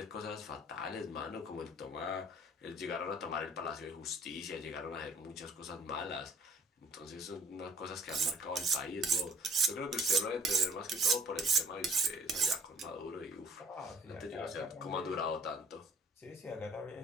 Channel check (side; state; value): both; normal; correlation 0.57